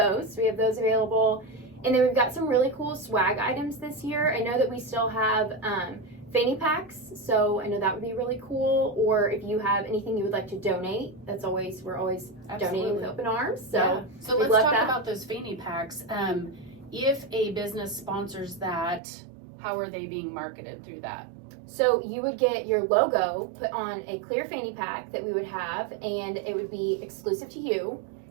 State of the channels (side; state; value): left; drops out; at 19.0 s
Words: We have those available. And then we've got some really cool swag items this year. I know that we still have fanny packs, so I know that would be really cool. Or if you have anything you would like to donate, we're always donating with open arms. So, yeah. So we let's love talk that. about those fanny packs. If a business sponsors that, how are they being marketed through that? So you would get your logo put on a clear fanny pack that we would have, and it would be exclusive to you,